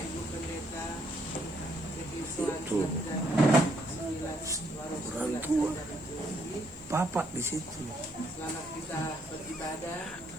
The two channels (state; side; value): noise; right; hiss, 29 dB below the sound